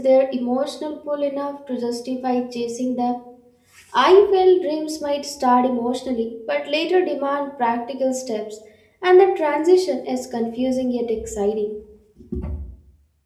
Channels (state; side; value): identical; both; correlation 1.00